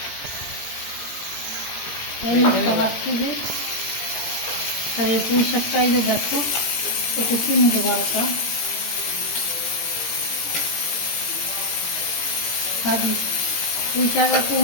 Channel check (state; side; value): late; right; 17 ms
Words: রাখছি যে। আর এই পুঁই শাকটা এই যে দেখো একটু চিনি দেবো একটা ভাজি। পুঁই শাক